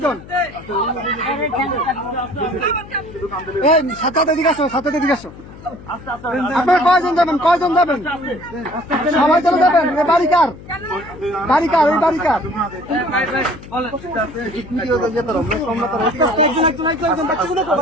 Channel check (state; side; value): noise; left; hum, 17 dB below the sound